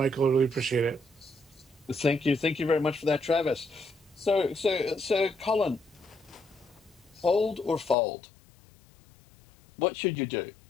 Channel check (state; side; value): drops out; right; at 8.0 s